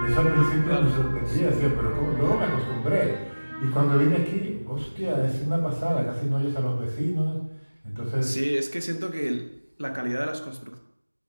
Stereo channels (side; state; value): both; inverted; correlation -1.00